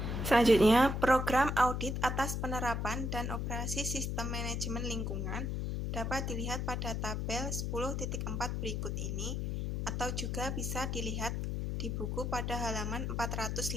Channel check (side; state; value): left; noise; hum, 1 dB below the sound